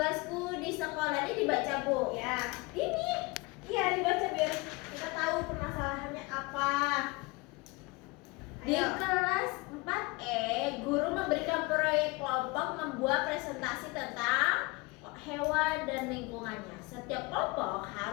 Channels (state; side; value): quieter; right; 24.6 dB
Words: di sekolah ini dibaca, Bu. Ya, ini. Iya, dibaca biar kita tahu permasalahannya apa. Di Ayo. kelas 4E, guru memberikan proyek kelompok membuat presentasi tentang hewan dan lingkungannya. Setiap kelompok